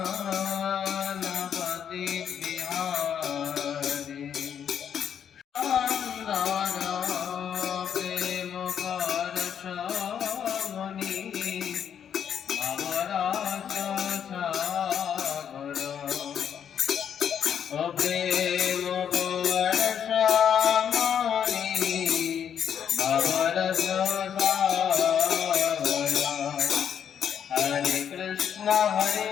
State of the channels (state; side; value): quieter; right; 8.5 dB